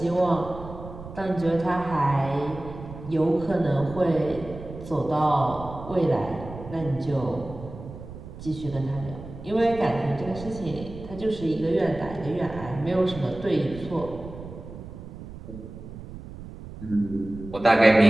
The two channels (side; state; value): right; noise; rumble, 13 dB below the sound